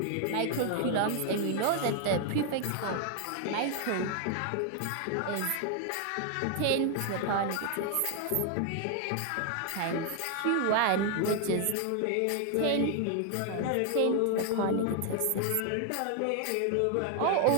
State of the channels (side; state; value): both; different; correlation 0.00